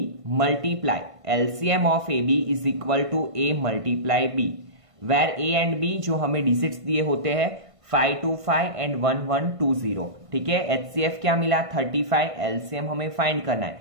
multiply LCM of AB is equal to A multiply B, where A and B जो हमें डिजिट्स दिए होते हैं 525 एंड 1120। ठीक है, HCF क्या मिला? 35। LCM हमें फाइंड करना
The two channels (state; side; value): late; left; 1.5 ms